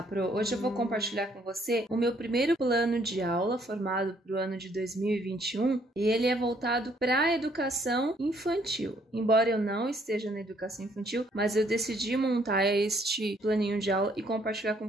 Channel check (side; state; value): both; normal; correlation 0.66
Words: Pro. Hoje eu vou compartilhar com você o meu primeiro plano de aula formado para o ano de 2021 e ele é voltado para a educação infantil. Embora eu não esteja na educação infantil, mas eu decidi montar este planinho de aula e compartilhar com